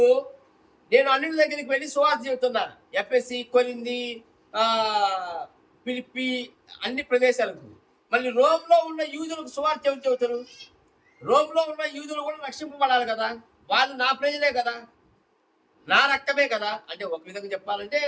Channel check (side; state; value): both; identical; correlation 1.00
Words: నేను అన్యుల దగ్గరికి వెళ్ళి సువార్త చెబుతున్నా, ఎఫెసీ, కొరింథీ, ఫిలిప్పీ అన్ని ప్రదేశాలకు. మళ్ళీ రోమ్లో ఉన్న యూదులకు సువార్త ఎవరు చెబుతారు? రోమ్లో ఉన్న యూదులు కూడా రక్షింపబడాలి కదా, వాళ్ళు నా ప్రజలే కదా, నా రక్తమే కదా. అంటే ఒక విధంగా చెప్పాలంటే